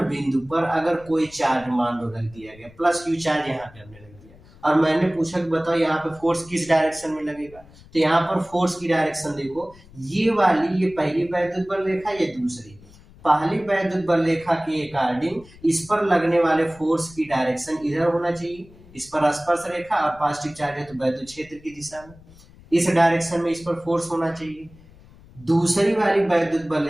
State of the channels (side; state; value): left; noise; rumble, 23 dB below the sound